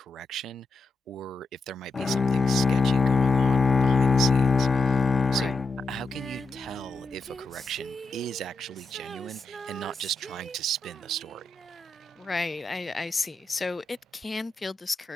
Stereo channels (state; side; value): quieter; right; 3.2 dB